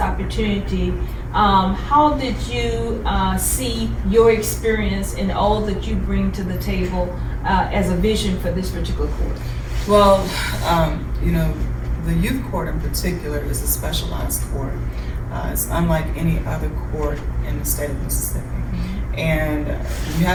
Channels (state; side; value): identical; both; correlation 1.00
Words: how did you see your experience and all that you bring to the table as a vision for this particular court? Well, the youth court in particular is a specialized court. It's unlike any other court in the state of Mississippi. And you